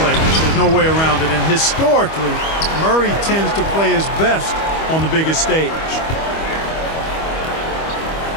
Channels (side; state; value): right; late; 25 ms